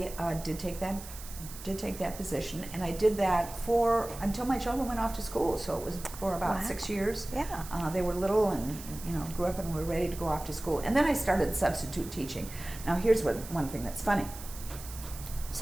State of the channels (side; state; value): right; noise; hiss, 14 dB below the sound